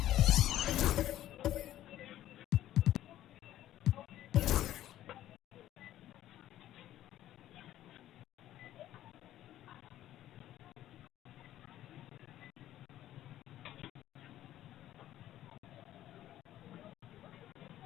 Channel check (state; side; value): quieter; right; 13.2 dB